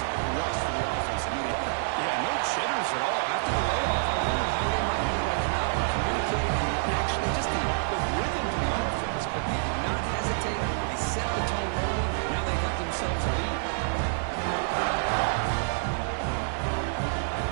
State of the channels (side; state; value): left; silent; digital silence